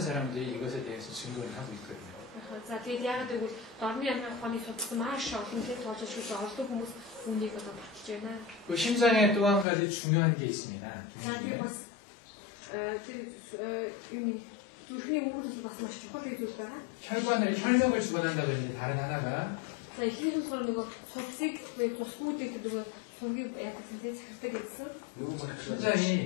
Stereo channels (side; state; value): right; drops out; at 9.7 s